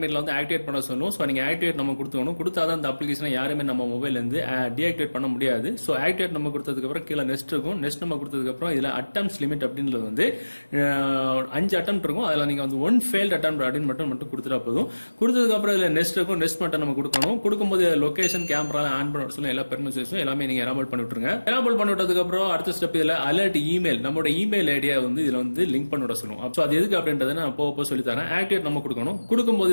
வந்து ஆக்டிவேட் பண்ண சொல்லும். சோ நீங்க ஆக்டிவேட் நம்ம கொடுத்துக்கணும். கொடுத்தாதான் இந்த அப்ளிகேஷனை யாருமே நம்ம மொபைல்ல இருந்து டீஆக்டிவேட் பண்ண முடியாது. ஸோ ஆக்டிவேட் நம்ம கொடுத்ததுக்கு அப்புறம் கீழே நெக்ஸ்ட் இருக்கும். நெக்ஸ்ட் நம்ம கொடுத்ததுக்கு அப்புறம் இதுல அட்டம்ஸ் லிமிட் அப்படின்றது வந்து 5 அட்டம் இருக்கும். அதுல நீங்க வந்து 1 ஃபெயில்ட் அட்டம் அப்படின்னு மட்டும் கொடுத்துட்டா போதும். கொடுத்ததுக்கு அப்புறம் இதுல நெக்ஸ்ட் இருக்கும். நெக்ஸ்ட் மட்டும் நம்ம கொடுக்கணும். கொடுக்கும்போது லொகேஷன், கேமரா ஆன் பண்ண சொல்ல எல்லா பெர்மிஷன்ஸும் எல்லாமே நீங்க எனேபிள் பண்ணி விட்டுருங்க. எனேபிள் பண்ணி விட்டதுக்கு அப்புறம் அடுத்த ஸ்டெப் இதுல அலர்ட் இமெயில், நம்மளோட இமெயில் ஐடியா வந்து இதுல வந்து லிங்க் பண்ணி விட சொல்லுவோம். ஸோ அது எதுக்கு அப்படின்றத நான் போக சொல்லி தரேன். ஆக்டிவேட் நம்ம கொடுக்கணும்.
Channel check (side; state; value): both; inverted; correlation -1.00